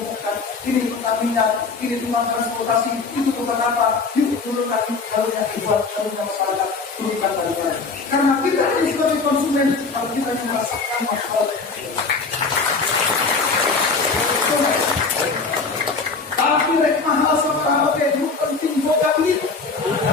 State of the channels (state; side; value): quieter; right; 4.4 dB